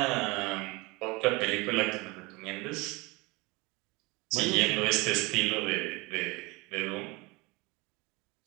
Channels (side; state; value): left; quieter; 24.9 dB